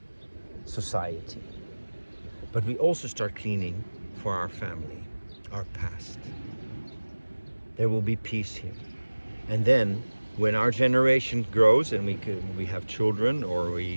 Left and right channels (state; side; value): inverted; both; correlation -1.00